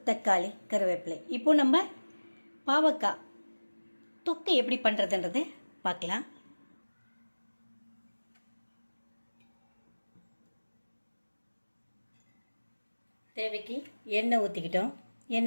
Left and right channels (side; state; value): both; inverted; correlation -1.00